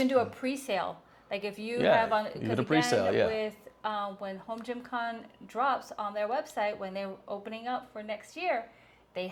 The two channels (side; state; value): both; identical; correlation 1.00